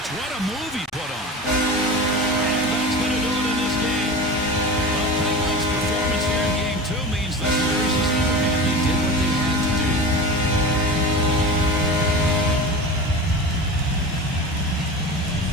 What a move he put on. And that's going to do it in this game. The Penguins' performance here in Game 2 means this series is over. And they did what they had to do.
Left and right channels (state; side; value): normal; both; correlation 0.31